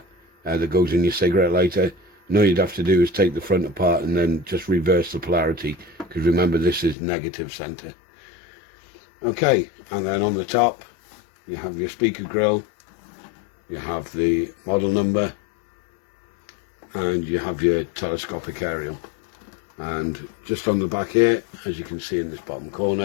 that goes in your cigarette lighter. And all you'd have to do is take the front apart and then just reverse the polarity, because remember, this is negative center. Okay, and then on the top you have your speaker grill, you have the model number, and you have your telescopic aerial. And just on the back here, as you can see in this bottom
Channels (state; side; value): drops out; right; at 7.0 s